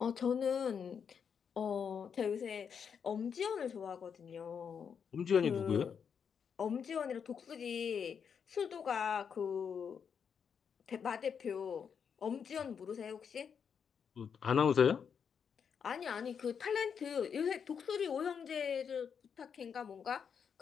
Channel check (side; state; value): right; quieter; 7.0 dB